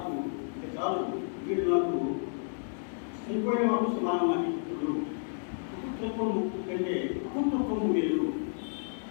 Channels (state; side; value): silent; right; digital silence